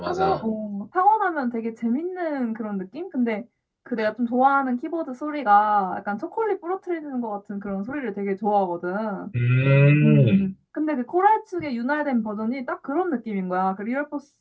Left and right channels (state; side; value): identical; both; correlation 1.00